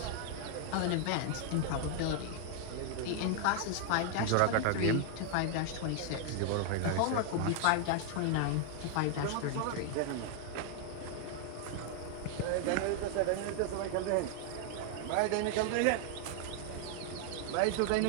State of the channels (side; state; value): both; different; correlation 0.00